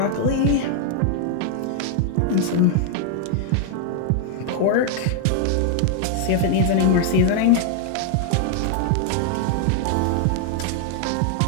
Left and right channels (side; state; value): both; different; correlation 0.00